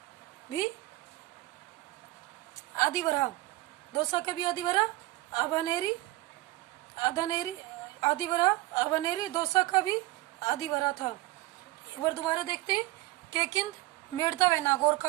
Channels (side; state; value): left; quieter; 18.3 dB